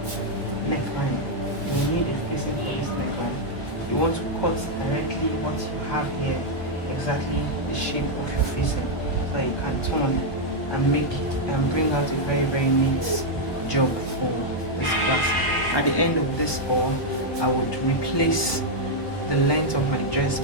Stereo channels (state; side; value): late; right; 1.0 ms